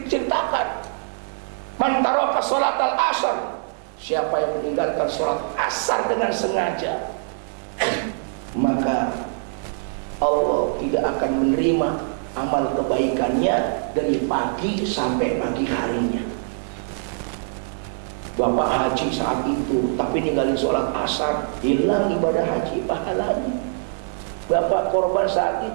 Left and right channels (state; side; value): silent; left; 58 dB below the other